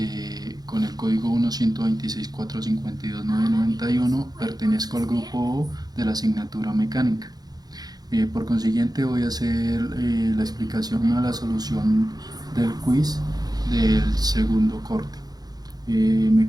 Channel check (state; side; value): late; left; 0.19 ms